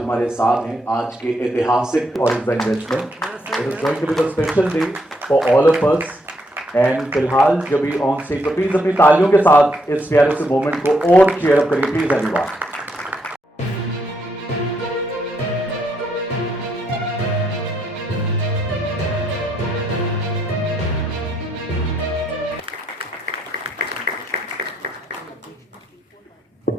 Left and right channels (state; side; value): normal; both; correlation 0.76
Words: हमारे साथ हैं आज के ऐतिहासिक और इस investment. It is going to be the special day for all of us. And फिलहाल जब भी ऑन स्टेज पर प्लीज अपनी तालियों के साथ इस प्यारे से मोमेंट को और चीयर अप करिए please everyone.